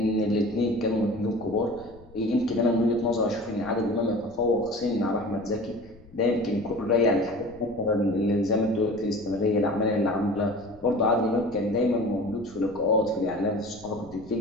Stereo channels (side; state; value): left; noise; rumble, 23 dB below the sound